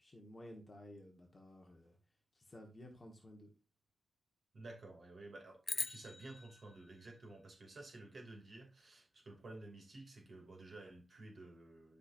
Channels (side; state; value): both; normal; correlation 0.90